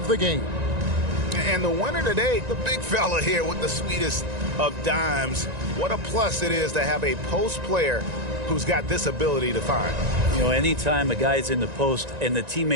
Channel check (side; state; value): left; late; 1.9 ms